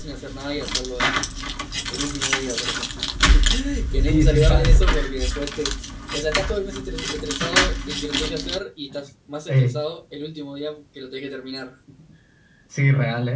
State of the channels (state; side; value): identical; both; correlation 1.00